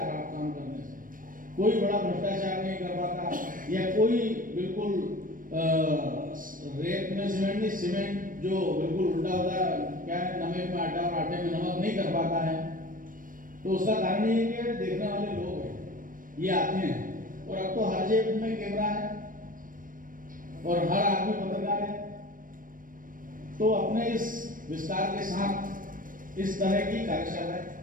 खराब काम करने से। कोई बड़ा भ्रष्टाचार नहीं कर पाता, या कोई बिल्कुल रेत में सीमेंट नहीं, सीमेंट जो बिल्कुल उल्टा होता है, क्या नमक में आटा और आटे में नमक नहीं कर पाता है। तो उसका कारण ये है कि देखने वाले लोग हैं, ये आते हैं, और अब तो हर जेब में कैमरा है और हर आदमी पत्रकार है। तो अपने इस विस्तार के साथ इस तरह की कार्यशालाएं,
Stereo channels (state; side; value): late; left; 0.40 ms